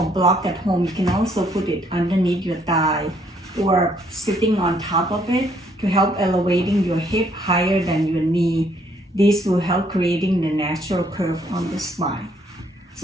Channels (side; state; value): both; normal; correlation 0.67